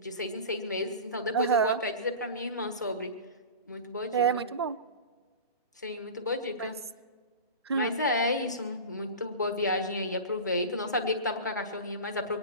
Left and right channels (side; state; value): both; inverted; correlation -0.31